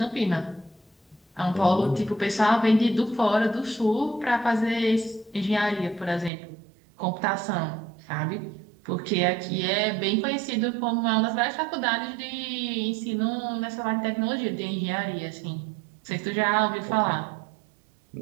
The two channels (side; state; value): left; drops out; at 6.3 s